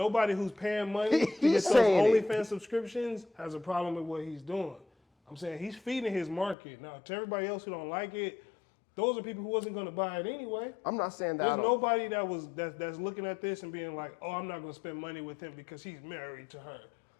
who's paying money to He's get those saying it. OnlyFans subscriptions has a problem with what he's doing. I'm saying he's feeding his market. Now, to everybody else who don't like it, those are people who wasn't going to buy it anyway. I'm not saying that I There's don't. nobody that's looking at this and being like, oh, I'm not going to spend money with him because he's married to her.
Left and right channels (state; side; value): drops out; right; at 6.6 s